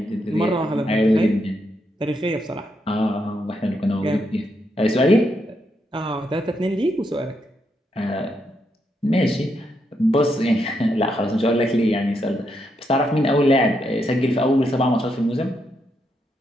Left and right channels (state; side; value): normal; both; correlation 0.80